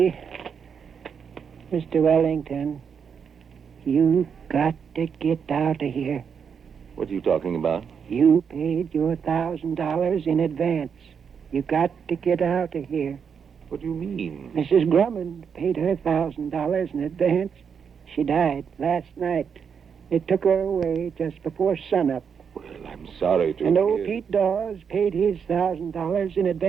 Mr. Wellington, you got to get out of here. What are you talking about? You paid your $1,000 in advance. You got to get out of here. What do you mean? Mrs. Drummond paid her $1,000 in advance. She died last night. They took her away just before sunup. Well, I'm sorry to And old hear. Pete Dawes paid his $1,000 in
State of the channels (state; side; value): quieter; left; 6.8 dB